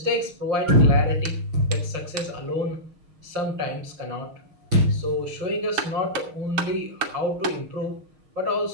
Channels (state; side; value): late; left; 6.4 ms